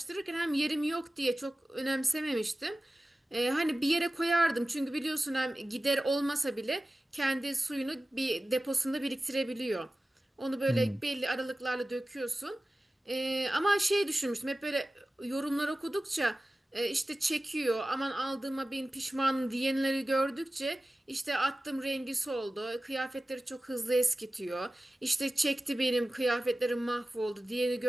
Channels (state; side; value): normal; both; correlation 0.95